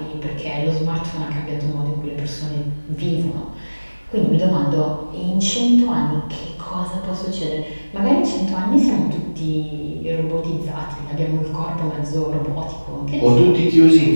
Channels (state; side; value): inverted; both; correlation -1.00